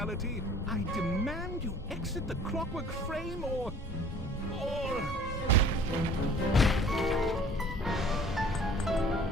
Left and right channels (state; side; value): normal; both; correlation 0.50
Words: I demand you exit the Clockwork frame or...